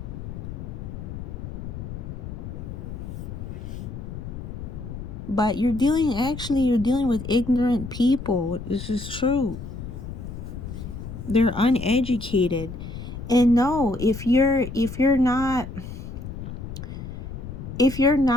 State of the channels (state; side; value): noise; left; rumble, 9 dB below the sound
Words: But you're dealing with ignorant people. This is true. They're uneducated. And no, if you